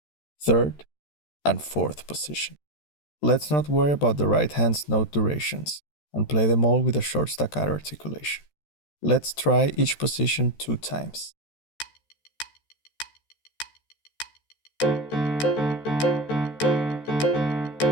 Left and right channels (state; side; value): late; right; 13 ms